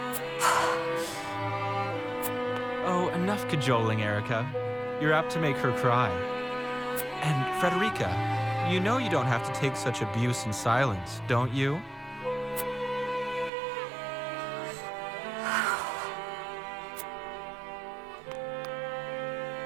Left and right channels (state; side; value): drops out; left; at 13.5 s